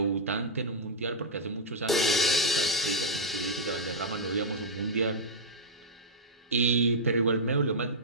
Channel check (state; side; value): normal; both; correlation -0.07